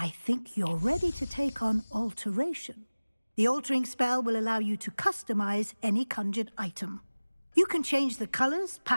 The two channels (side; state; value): both; inverted; correlation -1.00